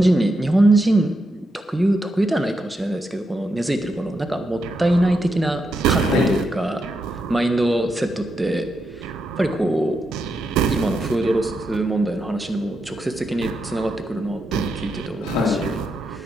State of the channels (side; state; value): both; normal; correlation 0.83